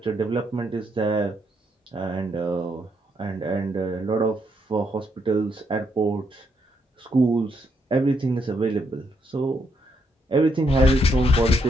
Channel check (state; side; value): normal; both; correlation 0.76